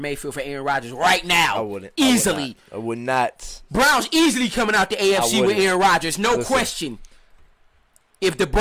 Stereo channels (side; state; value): both; identical; correlation 1.00